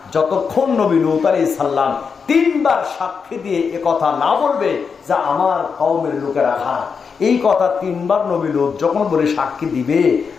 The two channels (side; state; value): right; quieter; 5.8 dB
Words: যতক্ষণ নবী লূত আলাইহিস সালাম 3 বার সাক্ষী দিয়ে এ কথা না বলবে যে আমার কওমের লোকেরা খারাপ। এই কথা 3 বার নবী লূত যখন বলে সাক্ষী দিবে